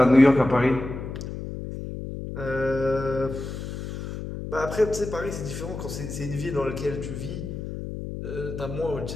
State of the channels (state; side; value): noise; left; hum, 7 dB below the sound